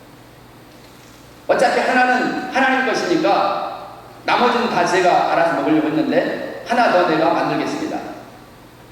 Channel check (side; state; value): both; identical; correlation 1.00